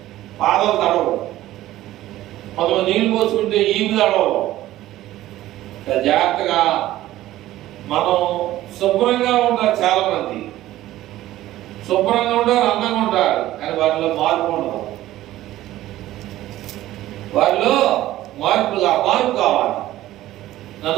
పాదాలు తడవు, కొంతమంది నీళ్ళు పోసుకుంటే ఈపు తడవు. జాగ్రత్తగా మనం శుభ్రంగా ఉంటారు. చాలా మంది శుభ్రంగా ఉంటారు, అందంగా ఉంటారు, కానీ వారిలో మార్పు ఉండదు. వారిలో మార్పు కావాలి.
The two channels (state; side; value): quieter; left; 14.9 dB